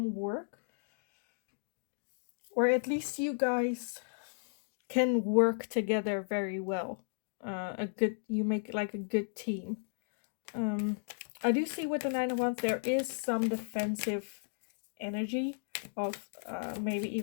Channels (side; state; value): right; silent; digital silence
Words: work, or at least you guys can work together very well. You make like a good team. I do see with the Nine of Wands there is some defensive energy of maybe